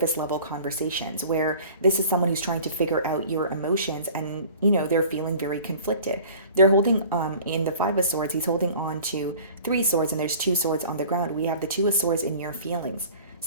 level conversations where this is someone who's trying to figure out your emotions, and they're feeling very conflicted. They're holding in the Five of Swords, he's holding on to three swords, and there's two swords on the ground. We have the Two of Swords in your feelings.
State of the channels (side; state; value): both; inverted; correlation -0.45